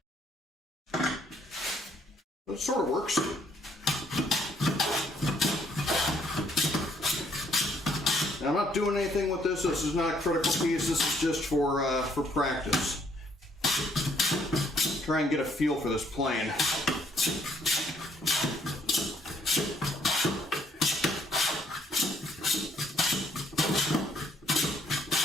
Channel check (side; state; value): both; normal; correlation 0.68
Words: but it sort of works. Now, I'm not doing anything with this. This is not a critical piece. This is just for practice. Try and get a feel for this plane.